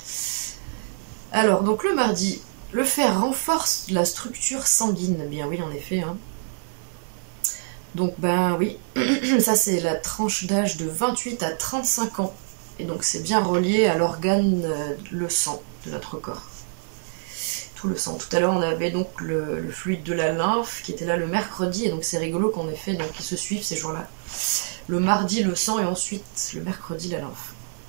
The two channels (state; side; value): silent; left; 62 dB below the other